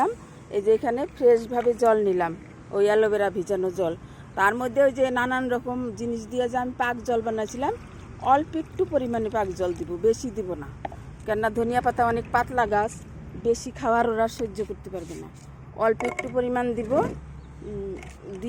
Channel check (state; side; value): identical; both; correlation 1.00